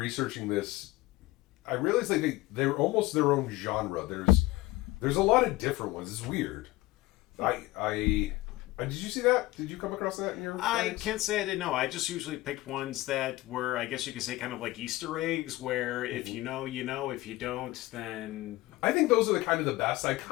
this, I realized like they're almost their own genre. There's a lot of different ones. It's weird. Did you see that? Did you come across that in your I guys? can't say I didn't know. I just usually picked ones that were, I guess you could say, kind of like Easter eggs, where if you know, you know. If you don't, then... I think those are the kind of the best. I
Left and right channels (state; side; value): quieter; right; 18.8 dB